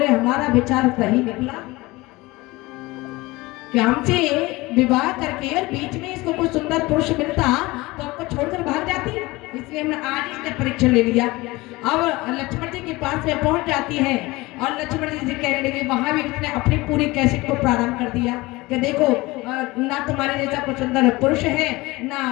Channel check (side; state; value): right; quieter; 21.3 dB